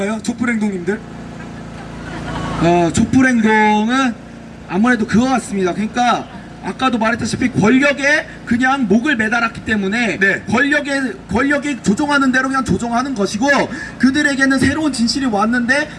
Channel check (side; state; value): both; identical; correlation 1.00